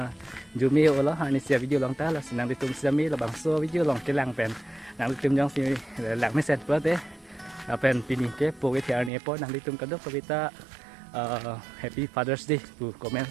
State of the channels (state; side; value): drops out; left; at 9.1 s